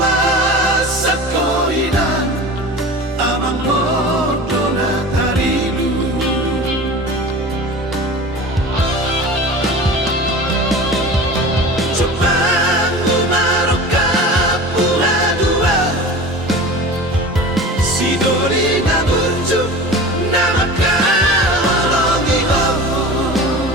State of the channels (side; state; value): both; normal; correlation 0.35